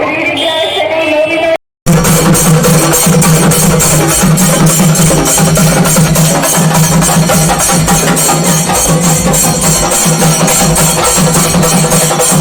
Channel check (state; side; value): identical; both; correlation 1.00